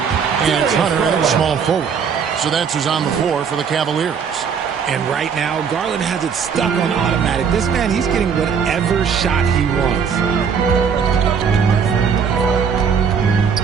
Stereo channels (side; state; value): left; quieter; 6.7 dB